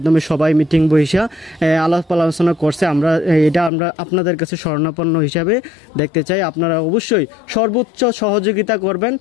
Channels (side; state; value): right; drops out; at 3.7 s